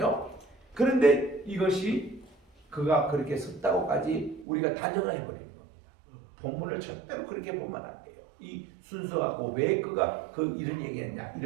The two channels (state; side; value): drops out; left; at 4.5 s